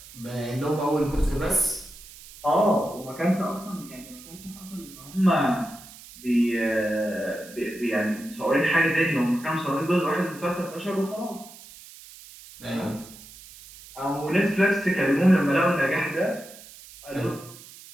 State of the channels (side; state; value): right; noise; hiss, 18 dB below the sound